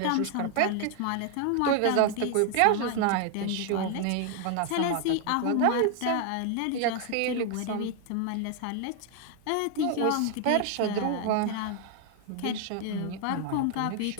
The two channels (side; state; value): both; different; correlation 0.00